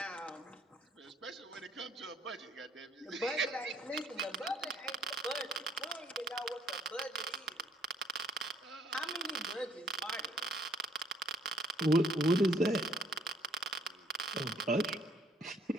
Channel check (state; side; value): normal; both; correlation 0.63